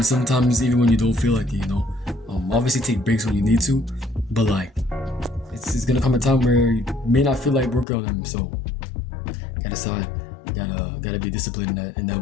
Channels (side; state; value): right; drops out; at 7.9 s